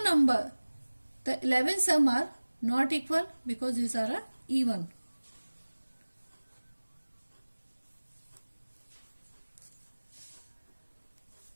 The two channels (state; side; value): inverted; both; correlation -1.00